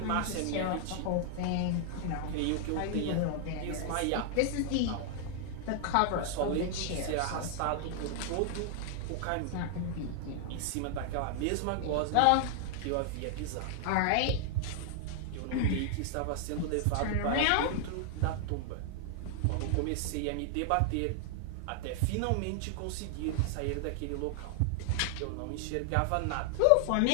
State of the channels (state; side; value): different; both; correlation 0.00